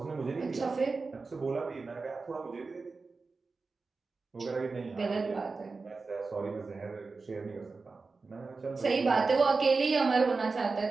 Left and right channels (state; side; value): quieter; left; 4.1 dB